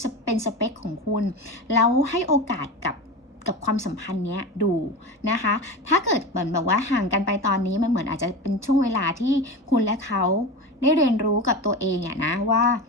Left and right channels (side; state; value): both; normal; correlation 0.26